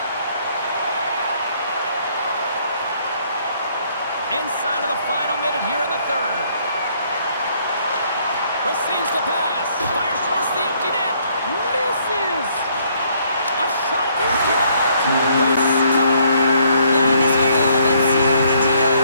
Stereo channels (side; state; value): both; inverted; correlation -0.67